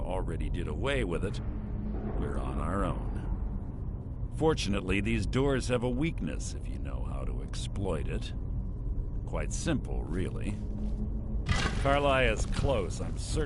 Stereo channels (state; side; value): identical; both; correlation 1.00